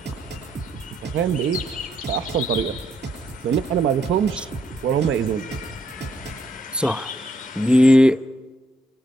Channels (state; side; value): normal; both; correlation 0.75